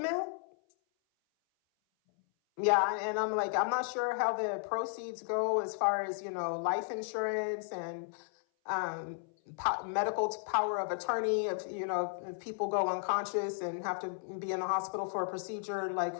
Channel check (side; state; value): right; silent; 55 dB below the other